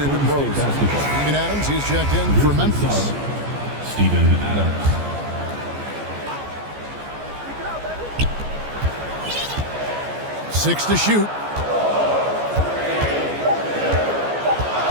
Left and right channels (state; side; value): late; left; 14 ms